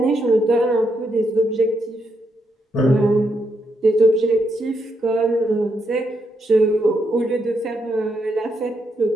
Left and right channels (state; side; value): normal; both; correlation 0.80